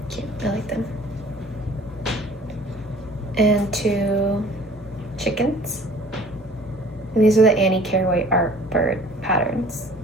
Cute, I like them. And 2 chickens. And these are the Annie Carraway art bird patterns.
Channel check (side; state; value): both; normal; correlation 0.50